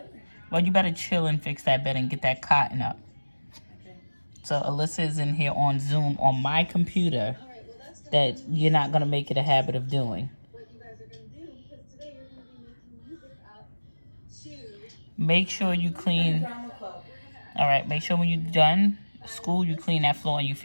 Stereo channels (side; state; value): both; inverted; correlation -1.00